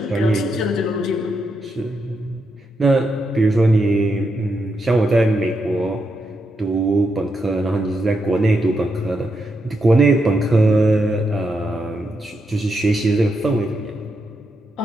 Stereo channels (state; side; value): normal; both; correlation 0.83